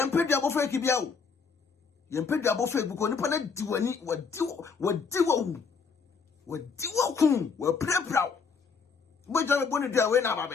pay the above Kibiao. Yam pay the above because Nippon do any what do play proud. But you're going to do away now,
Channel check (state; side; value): quieter; right; 5.4 dB